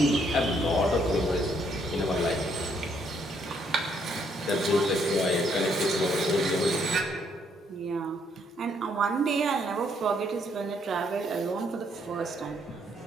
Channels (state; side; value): normal; both; correlation 0.70